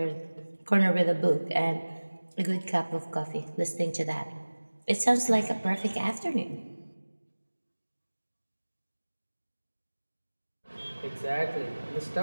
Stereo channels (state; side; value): inverted; both; correlation -1.00